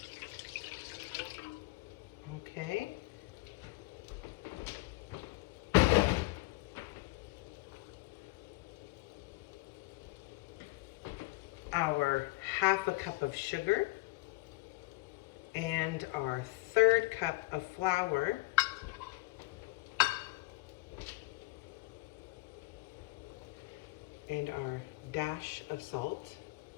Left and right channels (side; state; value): right; quieter; 21.2 dB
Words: Okay. Our half a cup of sugar and our 1/3 cup of flour. And our dash of salt.